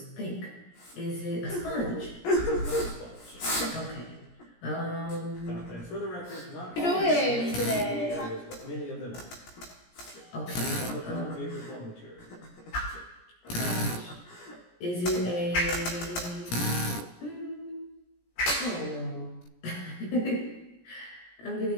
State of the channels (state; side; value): late; right; 17 ms